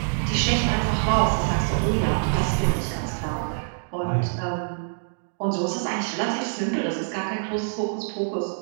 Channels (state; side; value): silent; left; digital silence